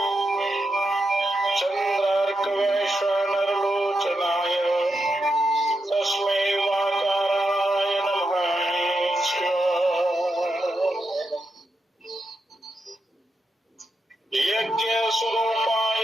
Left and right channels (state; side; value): normal; both; correlation 0.85